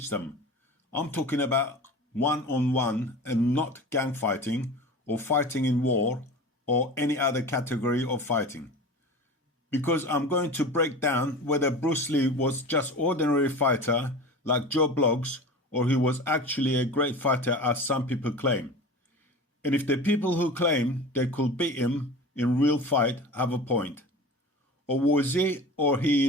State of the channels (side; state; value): both; normal; correlation 0.34